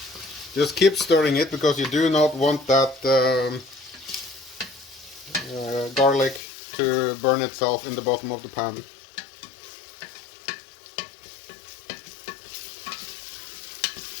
Just keep stirring it because you do not want that garlic to burn itself in the bottom of the pan.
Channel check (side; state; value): right; drops out; at 6.4 s